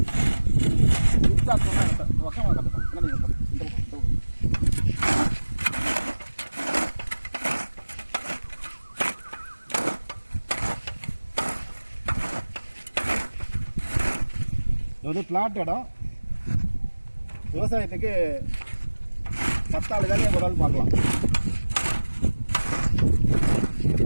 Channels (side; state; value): both; inverted; correlation -1.00